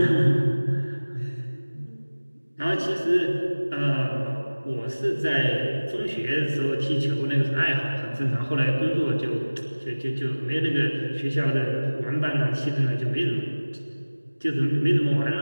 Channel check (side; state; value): both; inverted; correlation -1.00